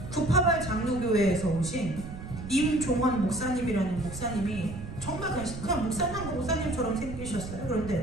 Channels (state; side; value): noise; right; rumble, 10 dB below the sound